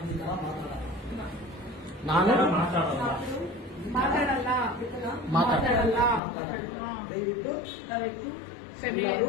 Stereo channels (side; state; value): right; drops out; at 6.2 s